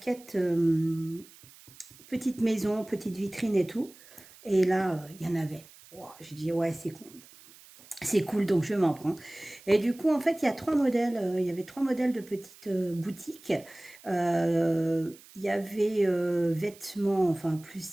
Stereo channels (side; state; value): right; noise; hiss, 23 dB below the sound